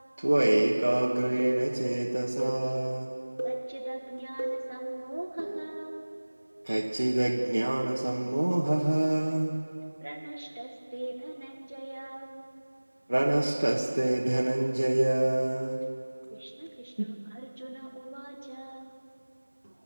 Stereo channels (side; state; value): both; inverted; correlation -1.00